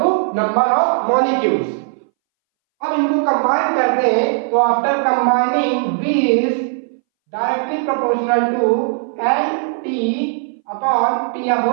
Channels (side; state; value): left; silent; 64 dB below the other